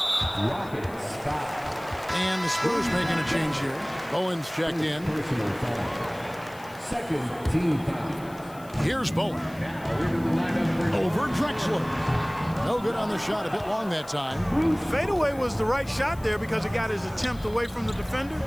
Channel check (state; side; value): noise; left; hiss, 23 dB below the sound